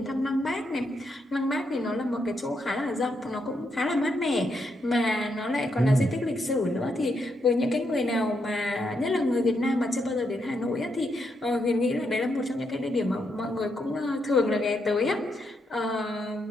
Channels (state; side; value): normal; both; correlation 0.80